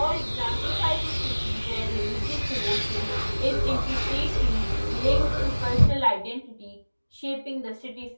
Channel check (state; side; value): inverted; both; correlation -1.00